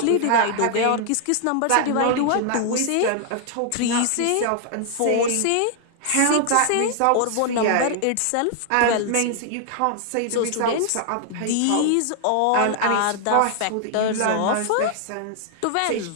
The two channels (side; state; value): both; different; correlation 0.00